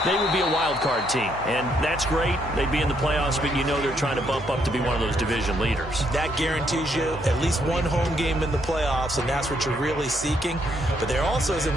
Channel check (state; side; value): normal; both; correlation 0.73